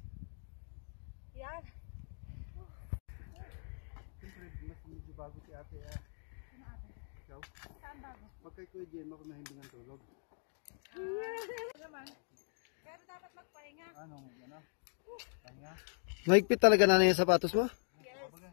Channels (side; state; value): right; silent; 52 dB below the other